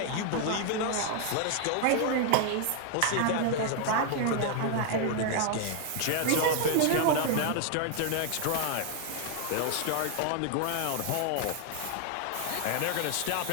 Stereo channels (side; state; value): both; different; correlation 0.00